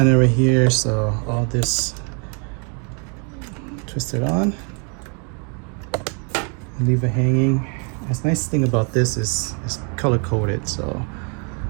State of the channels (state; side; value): quieter; left; 37.7 dB